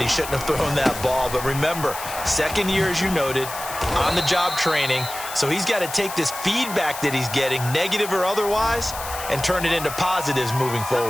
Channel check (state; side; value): noise; left; hiss, 10 dB below the sound